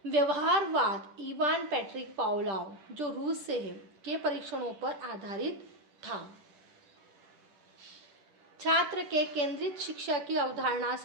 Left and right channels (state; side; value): late; left; 10 ms